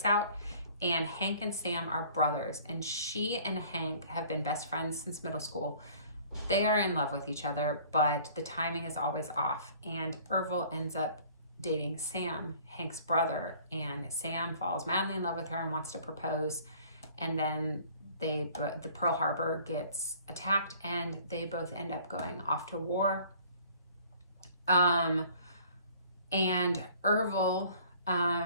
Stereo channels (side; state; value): both; inverted; correlation -0.53